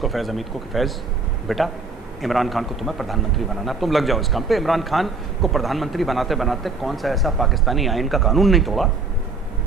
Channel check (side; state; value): left; quieter; 4.0 dB